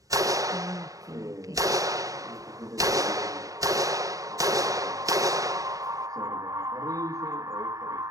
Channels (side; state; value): left; late; 0.16 ms